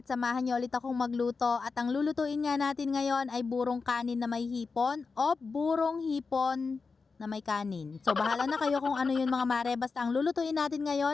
at samahan niyo ulit akong magluto at ang lulutuin nga natin ngayon ay burong kanin na may hipon o burong hipon na may kanin. So bahala na kayo kung ano yun mga mare, basta ang lulutuin natin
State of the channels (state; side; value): quieter; right; 4.6 dB